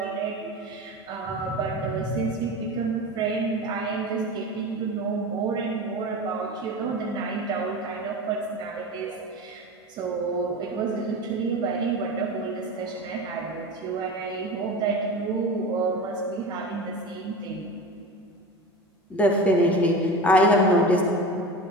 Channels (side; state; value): both; normal; correlation 0.29